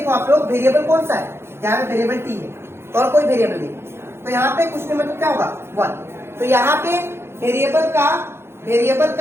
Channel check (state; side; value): late; left; 0.12 ms